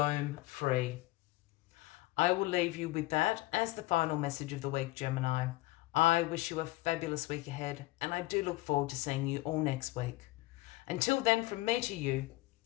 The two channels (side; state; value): right; quieter; 19.4 dB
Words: free. I will leave you with that as the final message of the week, Gemini. I wish you a fabulous week ahead, and I do look forward to seeing you all next week. Until then, from me to you,